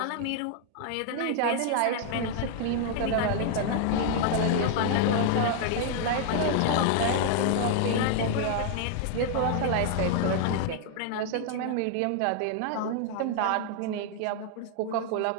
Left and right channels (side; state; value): both; different; correlation 0.00